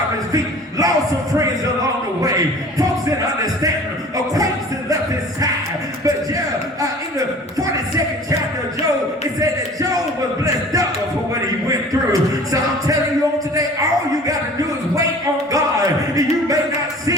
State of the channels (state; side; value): normal; both; correlation 0.45